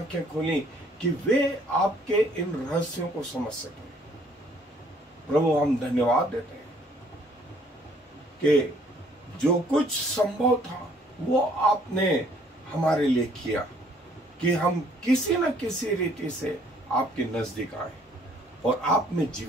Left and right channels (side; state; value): both; normal; correlation 0.61